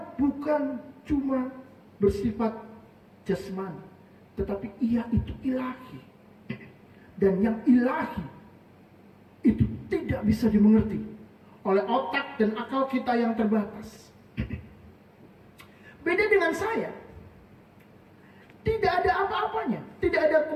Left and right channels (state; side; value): identical; both; correlation 1.00